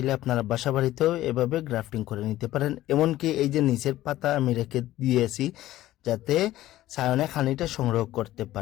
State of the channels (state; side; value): quieter; right; 15.0 dB